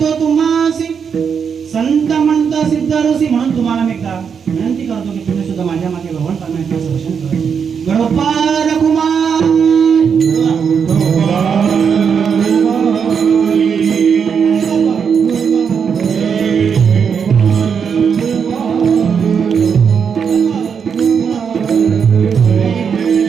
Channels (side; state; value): left; quieter; 6.7 dB